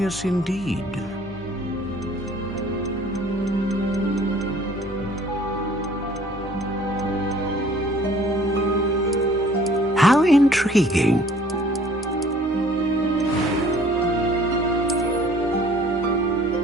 indeed. How intriguing.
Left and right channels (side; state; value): both; normal; correlation 0.55